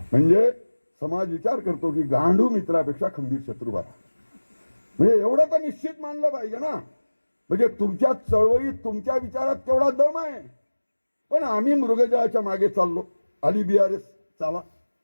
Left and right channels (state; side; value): inverted; both; correlation -1.00